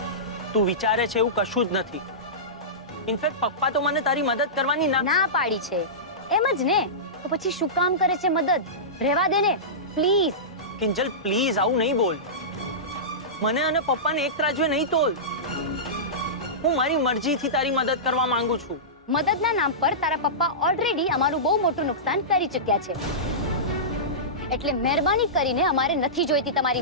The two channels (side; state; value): both; normal; correlation -0.18